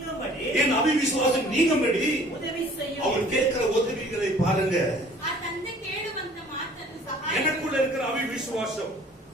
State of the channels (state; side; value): normal; both; correlation 0.52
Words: அவிவிசுவாசம் நீங்கும்படி உதவி செய்யும். அவர் கேட்கிற உதவிகளை பாருங்க. ಆ ತಂದೆ ಕೇಳುವಂತ ಮಾತನ್ನು ಸಹಾಯ எனக்குள்ள இருக்கிற அவிவிசுவாசம்,